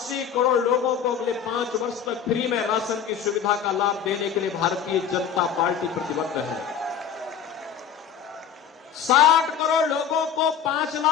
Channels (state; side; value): quieter; right; 8.0 dB